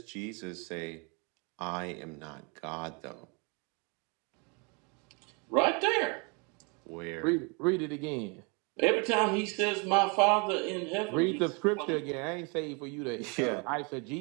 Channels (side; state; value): left; quieter; 32.7 dB